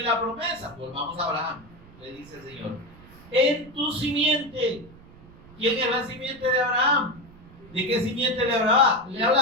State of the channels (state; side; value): noise; right; rumble, 22 dB below the sound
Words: la promesa, volvamos a Abraham, le dice el Señor: en tu simiente. ¿Quién es la simiente de Abraham? ¿De qué simiente le